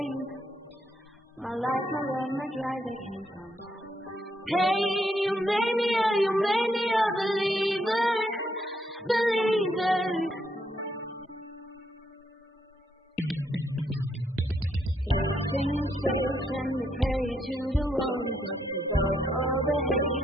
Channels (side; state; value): both; normal; correlation 0.76